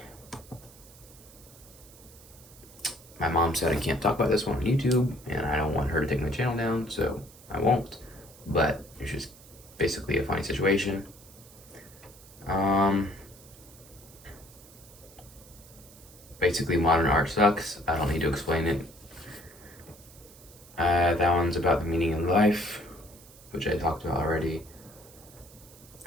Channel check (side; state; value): right; noise; hiss, 22 dB below the sound